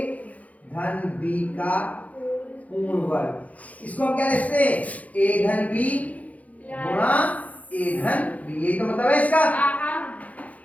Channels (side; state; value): right; late; 0.071 ms